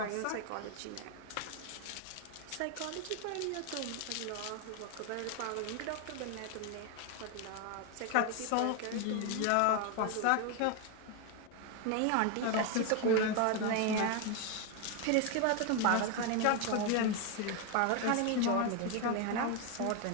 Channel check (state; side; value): different; both; correlation 0.01